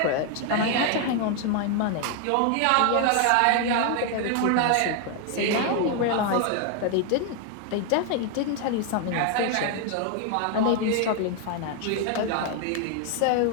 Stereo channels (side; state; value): both; different; correlation 0.01